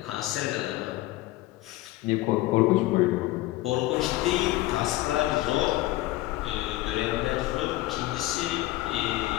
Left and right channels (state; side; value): quieter; right; 17.4 dB